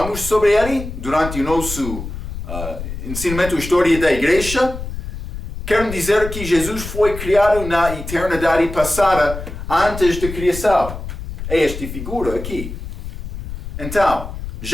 sobre ele durante o nosso ensinamento História da Igreja. Quero dizer que Jesus foi criado na eternidade passada, antes da criação. É esta figura aqui. Então,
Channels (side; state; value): left; noise; rumble, 9 dB below the sound